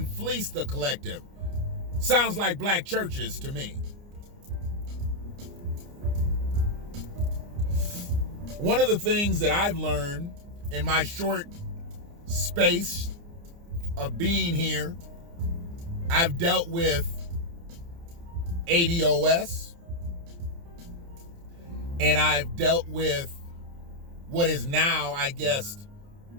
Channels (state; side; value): late; left; 29 ms